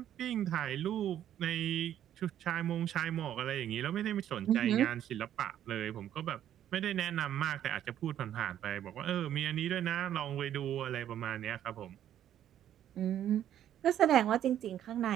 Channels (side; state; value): left; quieter; 11.0 dB